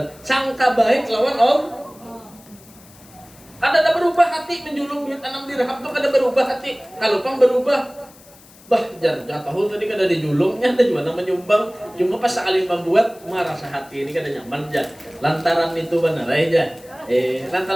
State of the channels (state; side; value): noise; left; hiss, 24 dB below the sound